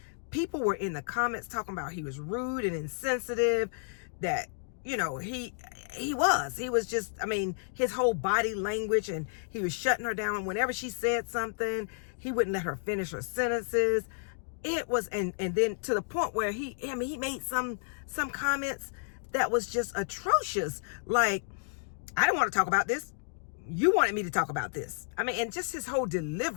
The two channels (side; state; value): right; silent; digital silence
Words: People were in the comments talking about he was rude and insensitive, that, you know, he was just, I mean, his whole body language, and he was shutting her down. Whenever she said something, he wouldn't let her finish her sentences. It was, and then to the point where he made some comments that was just atrocious. Like, I didn't want to talk about this. You wanted me to talk about this. I mean, and just his whole